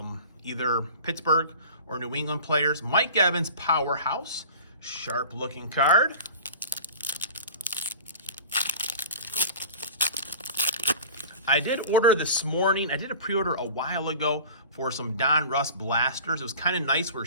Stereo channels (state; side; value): inverted; both; correlation -0.40